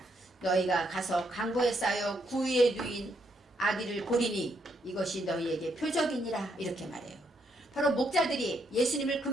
너희가 가서 강보에 쌓여 구유에 누인 아기를 보리니 이것이 너희에게 표적이니라, 이렇게 말해요. 바로 목자들이 예수님을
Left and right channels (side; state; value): both; normal; correlation 0.75